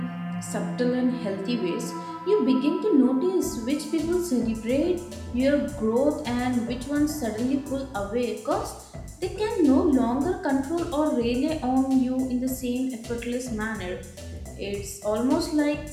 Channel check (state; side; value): identical; both; correlation 1.00